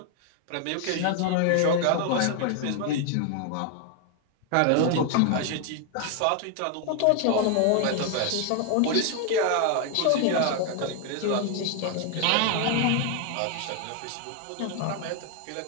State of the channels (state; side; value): different; both; correlation 0.00